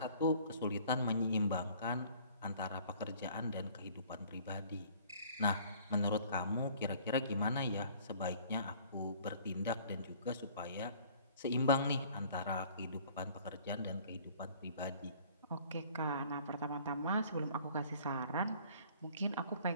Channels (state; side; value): inverted; both; correlation -0.53